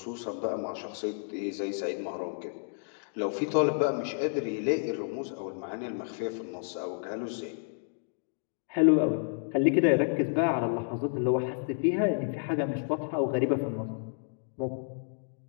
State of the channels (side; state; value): right; silent; digital silence